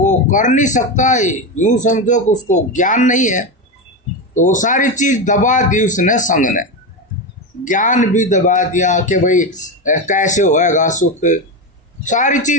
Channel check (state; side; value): normal; both; correlation 0.15